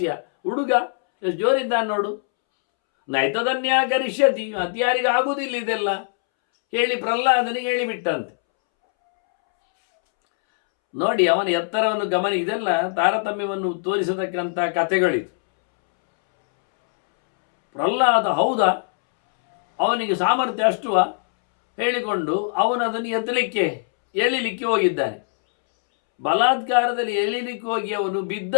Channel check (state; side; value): silent; right; 64 dB below the other